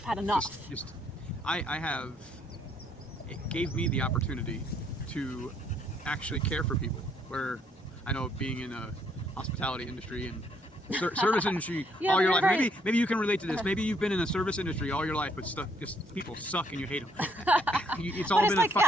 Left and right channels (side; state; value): both; normal; correlation 0.69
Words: had enough. I have. It gave me the opportunity to actually care for people. Where I know being in a hospitality industry and service industry Yeah, all your you're life. right. Maybe you can relate to this. Maybe you've been in a service industry all your life, but just people suck and you hate them. It's all But been it's like, a